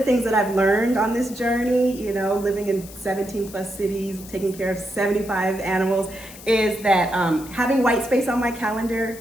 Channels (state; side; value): noise; left; hiss, 17 dB below the sound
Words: things that I've learned on this journey, living in 17 plus cities, taking care of 75 animals, is that having white space on my